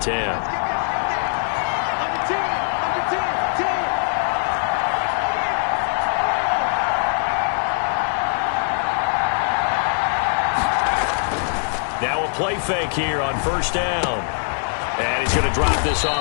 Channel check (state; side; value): silent; right; digital silence